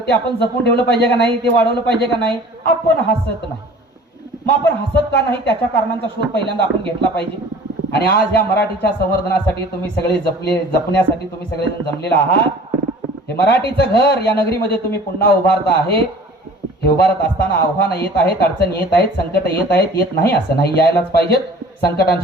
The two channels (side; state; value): both; normal; correlation 0.46